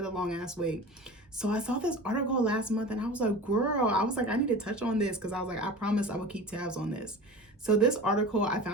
the long ass wait. So I saw this article last month and I was like, girl, I need to touch on this because I was like, I promised I would keep tabs on this. So this article I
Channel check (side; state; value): both; normal; correlation 0.35